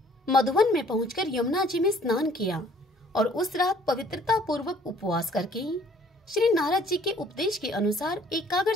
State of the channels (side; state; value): both; normal; correlation 0.58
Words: मधुवन में पहुंचकर यमुना जी में स्नान किया और उस रात पवित्रता पूर्वक उपवास करके श्री नारद जी के उपदेश के अनुसार